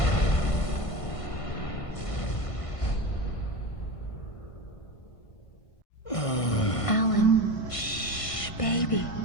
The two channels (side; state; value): right; late; 1.5 ms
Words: Alan, shh, baby.